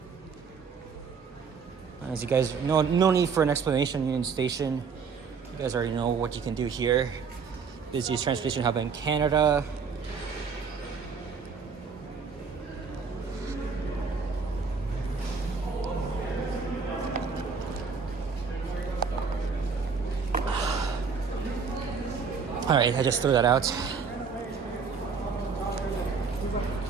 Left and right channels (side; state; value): left; quieter; 5.6 dB